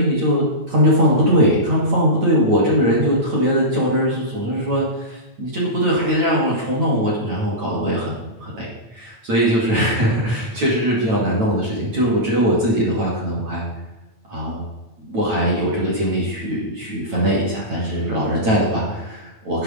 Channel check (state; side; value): late; left; 9.0 ms